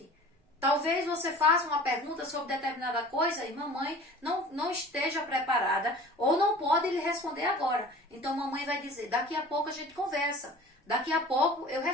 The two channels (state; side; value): normal; both; correlation 0.43